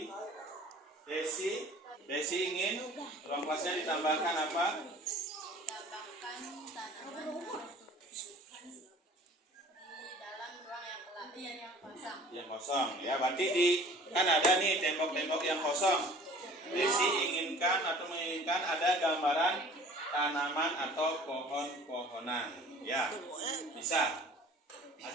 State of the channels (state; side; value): normal; both; correlation 0.48